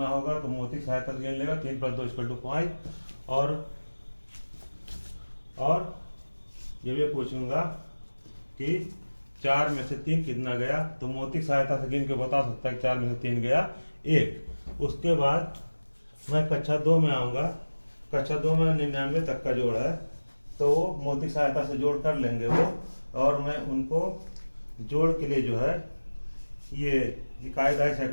होगा, तो मोती सहायता से गिन लेगा 3 + 2 = 5। और ये भी पूछूंगा कि 4 में से 3 कितना गया, तो मोती सहायता से गिन के बता सकता है 4 में से 3 गया 1। उसके बाद मैं कक्षा 2 में आऊँगा। कक्षा 2 में 99 तक का जोड़ है, तो वो मोती सहायता से जोड़ कर लेंगे वो, और मैं उनको जोड़ के लिए जो है ये कायदा है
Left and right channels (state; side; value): inverted; both; correlation -1.00